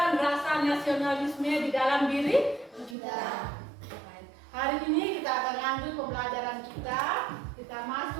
rasa nasionalisme di dalam diri kita. Hari ini kita akan lanjut pembelajaran kita. Kita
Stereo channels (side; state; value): left; drops out; at 3.0 s